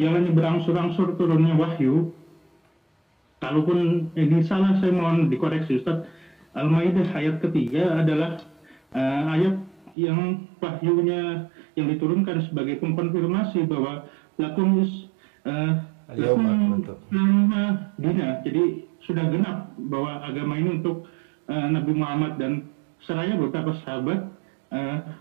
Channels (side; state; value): left; drops out; at 10.0 s